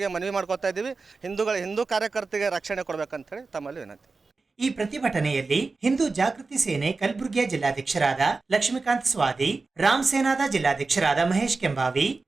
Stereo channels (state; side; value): quieter; left; 3.9 dB